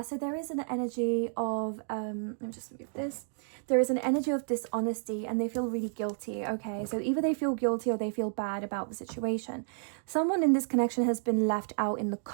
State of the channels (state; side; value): silent; left; digital silence